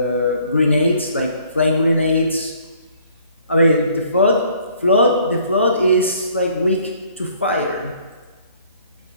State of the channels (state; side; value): inverted; both; correlation -0.60